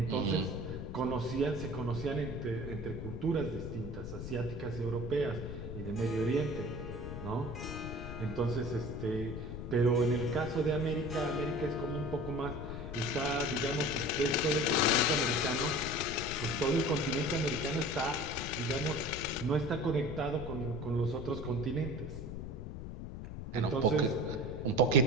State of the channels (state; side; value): noise; left; rumble, 8 dB below the sound